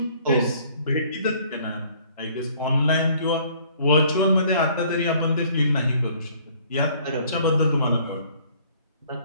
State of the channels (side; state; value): both; inverted; correlation -0.58